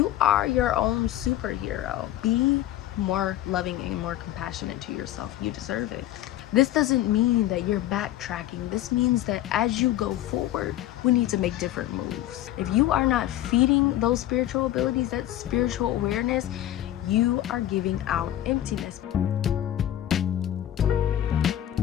are your own superhero. Be more loving and more compassionate to yourself. You deserve it. This doesn't mean that you're backtracking. This means that as you go forward, we need to make different moves. If you are not feeding those spiritual abilities, that spiritual awareness, you are giving out emptiness.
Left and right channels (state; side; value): quieter; right; 13.1 dB